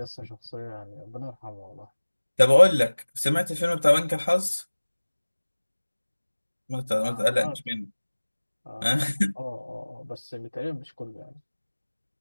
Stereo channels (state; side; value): inverted; both; correlation -1.00